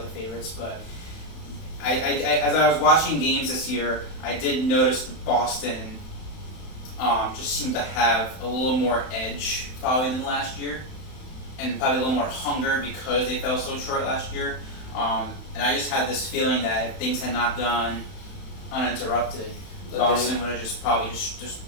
the favorites. But as I was watching games this year, I did notice that Boston just seemed to have a little more edge probably than last year, and probably a little more hunger because they fell so short last year. And I just had this feeling that if things had not gone uninterrupted, Boston would have just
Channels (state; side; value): late; right; 32 ms